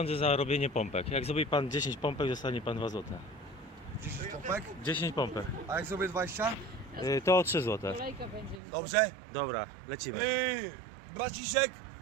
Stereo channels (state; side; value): drops out; left; at 8.6 s